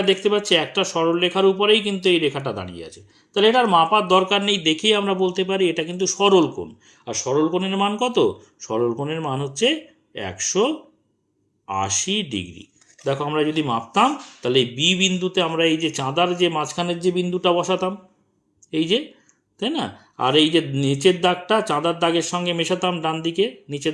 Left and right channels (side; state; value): both; identical; correlation 1.00